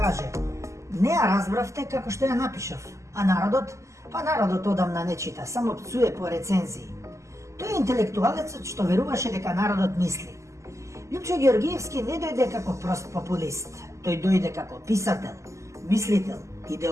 не ја разбравте како што ја напишав, а народот одамна не чита, само пцуе по рецензии. Тој е интелектуалецот што веруваше дека народот мисли. Лјупчо Ѓоргиевски не дојде како прост популист, тој дојде како писател, мислител,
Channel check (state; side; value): late; left; 0.14 ms